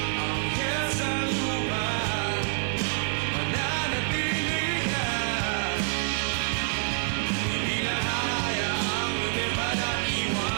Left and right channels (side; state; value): left; silent; 57 dB below the other